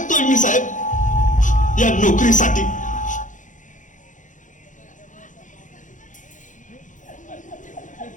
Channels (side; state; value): right; late; 0.37 ms